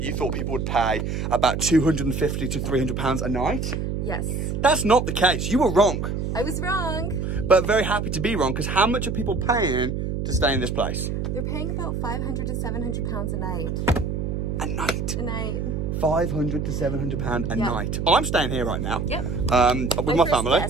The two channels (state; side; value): noise; right; hum, 2 dB below the sound